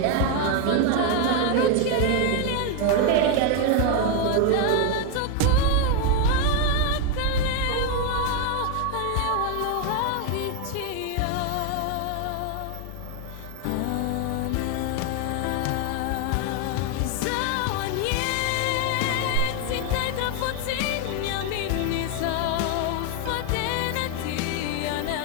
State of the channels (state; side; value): different; both; correlation 0.01